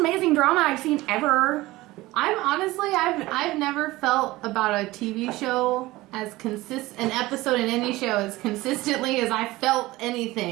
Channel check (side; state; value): left; quieter; 18.9 dB